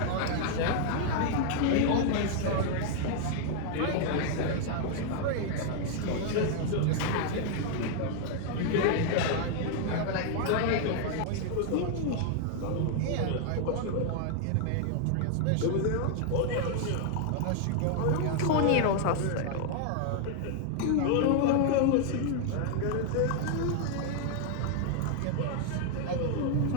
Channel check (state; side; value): different; both; correlation 0.00